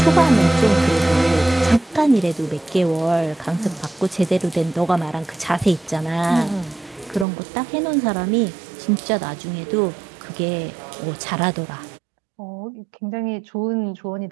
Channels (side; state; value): left; drops out; at 7.2 s